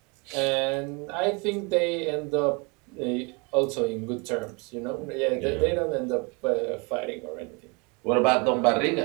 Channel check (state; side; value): quieter; left; 30.7 dB